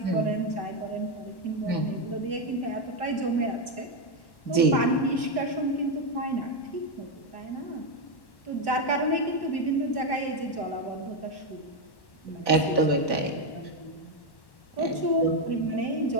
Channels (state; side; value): late; right; 1.1 ms